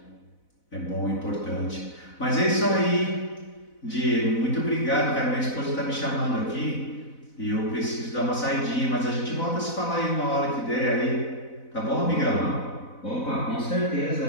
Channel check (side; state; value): right; late; 4.0 ms